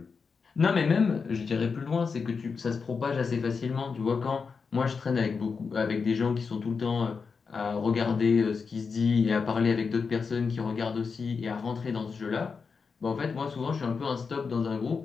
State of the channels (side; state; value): right; quieter; 5.3 dB